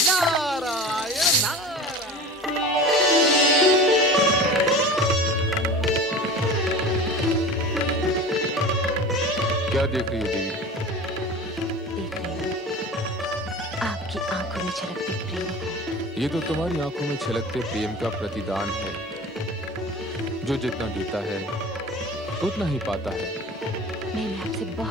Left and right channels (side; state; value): both; normal; correlation 0.35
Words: नारायण। क्या देख रही हो देवी? देख रही हूँ आपकी आंखों में छलकते प्रेम को। ये तो तुम्हारी आंखों में छलकते प्रेम का प्रतिदान है। जो जितना देता है उतना ही पाता है। मैंने आपसे